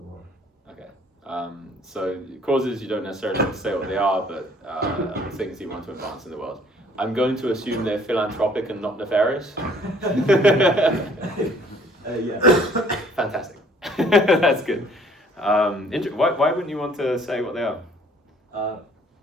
world. Okay. So causes, you don't necessarily have to say what they are, but things you want to advance in the world. I'm going to assume they're philanthropic and not nefarious. Yeah. Fantastic. That's good. Why wouldn't you want to say what they are?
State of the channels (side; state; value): both; normal; correlation 0.58